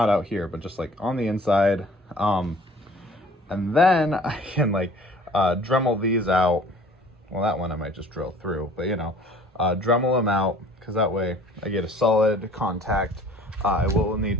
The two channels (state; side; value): normal; both; correlation 0.51